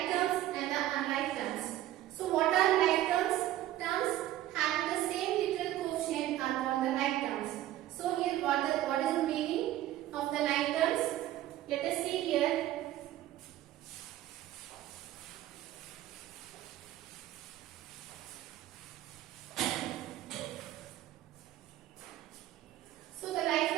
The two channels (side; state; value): left; quieter; 13.9 dB